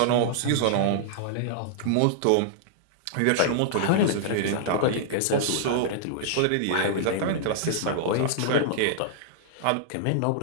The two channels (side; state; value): both; different; correlation -0.01